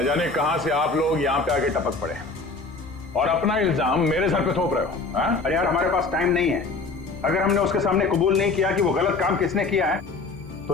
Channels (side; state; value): right; quieter; 3.9 dB